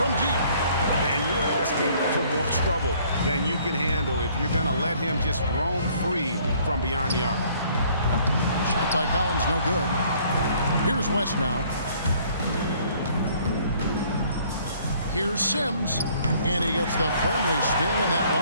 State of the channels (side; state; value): both; inverted; correlation -0.60